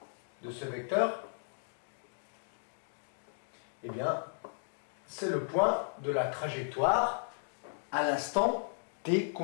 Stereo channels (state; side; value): silent; right; digital silence